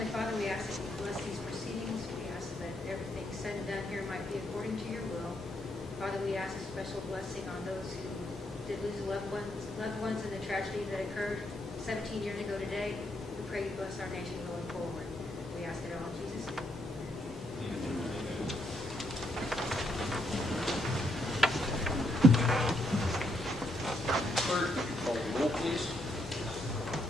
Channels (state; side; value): normal; both; correlation 0.76